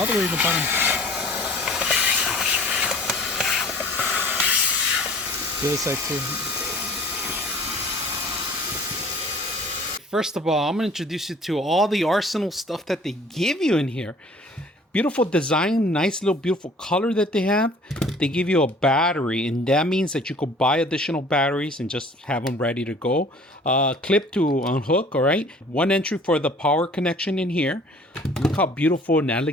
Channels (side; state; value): both; normal; correlation 0.50